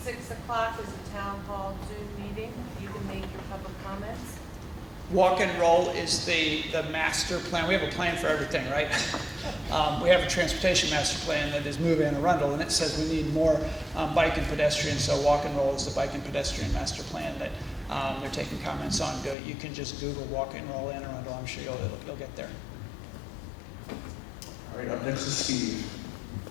6 o'clock is a town hall Zoom meeting. You can make your public comments. Walk and roll is the master plan. We have a plan for everything, right? We have a transportation master plan that is Move Anne Arundel, and it says we need more bike and pedestrian. So walk and roll is the bike and pedestrian master plan that they're taking comments on. You can just Google walk and roll Anne Arundel. I'm sure you'll get there. All right, up next is Steve.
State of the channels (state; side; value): drops out; right; at 19.4 s